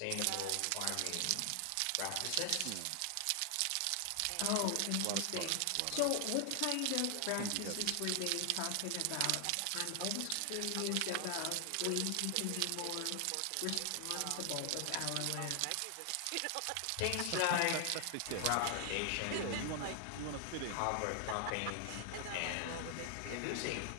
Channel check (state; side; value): different; both; correlation 0.00